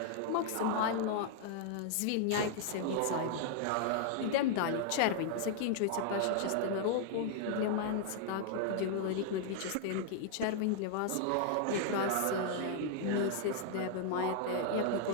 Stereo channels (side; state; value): both; different; correlation 0.00